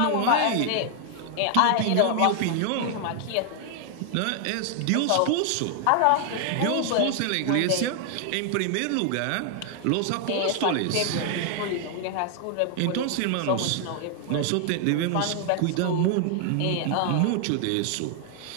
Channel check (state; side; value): different; both; correlation 0.00